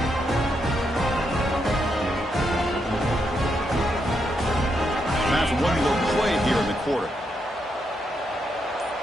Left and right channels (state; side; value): normal; both; correlation 0.81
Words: After one little play here in the quarter.